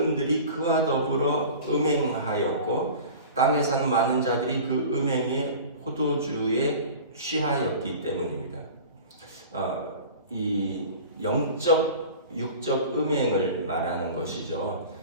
그와 더불어 음행하였고 땅에 사는 많은 자들이 그 음행의 포도주에 취하였기 때문입니다. 이 영적, 육적 음행을 말하는 것이죠.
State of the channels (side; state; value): both; inverted; correlation -0.38